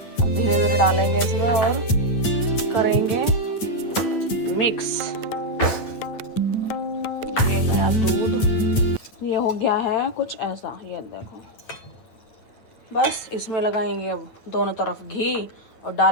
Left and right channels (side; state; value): right; late; 9.1 ms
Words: धीरे धीरे डालेंगे इसमें और करेंगे मिक्स। ये गया दूध, ये हो गया है कुछ ऐसा, ये देखो। बस इसमें लगाएंगे अब दोनों तरफ घी और